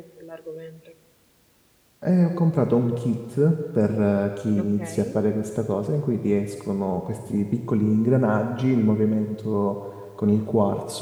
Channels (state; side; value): identical; both; correlation 1.00